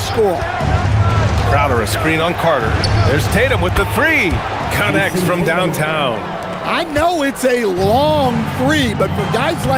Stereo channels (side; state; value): both; identical; correlation 1.00